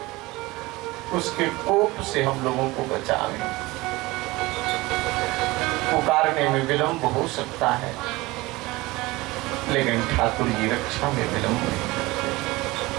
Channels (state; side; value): quieter; left; 21.0 dB